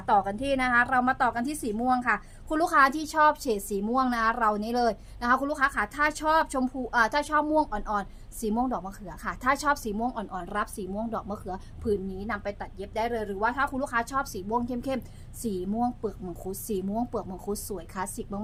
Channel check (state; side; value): identical; both; correlation 1.00